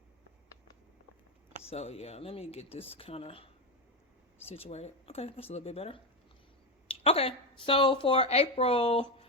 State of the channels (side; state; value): both; normal; correlation 0.12